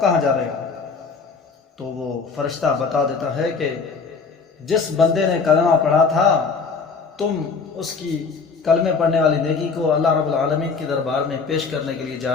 کہاں جا رہے ہو؟ تو وہ فرشتہ بتا دیتا ہے کہ جس بندے نے کلمہ پڑھا تھا تم اس کی کلمے پڑھنے والی نیکی کو اللہ رب العالمین کی دربار میں پیش کرنے کے لیے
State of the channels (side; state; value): right; quieter; 5.0 dB